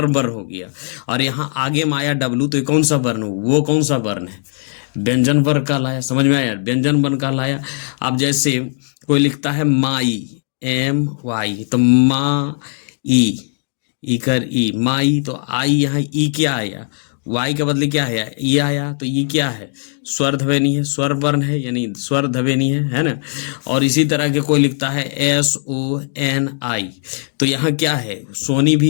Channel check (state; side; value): silent; right; 60 dB below the other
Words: वर्ण हो गया, और यहाँ आगे में आया डब्लू, तो ये कौन सा वर्ण हो, वो कौन सा वर्ण है, व्यंजन वर्ण कहलाया। समझ में आया, व्यंजन वर्ण कहलाया। अब जैसे कोई लिखता है माई, MY, तो मा ई कर ई, माई, तो आई यहाँ ई क्या आया, वाई के बदले क्या है, ये आया, तो ये क्या है, स्वर ध्वनि है, स्वर वर्ण है, यानी स्वर ध्वनि है ना। और इसी तरह के कोई लिखता है SONI, तो यहाँ क्या है, सोनी